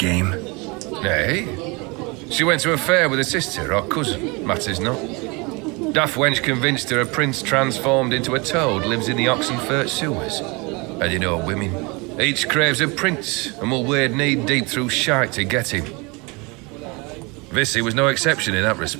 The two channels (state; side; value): quieter; left; 27.8 dB